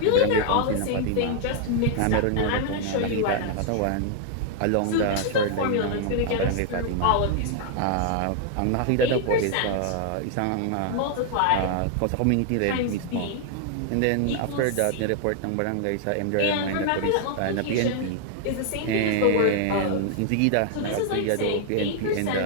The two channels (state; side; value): different; both; correlation 0.00